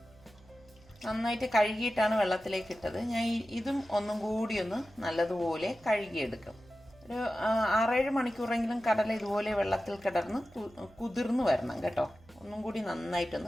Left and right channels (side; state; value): right; noise; hum, 26 dB below the sound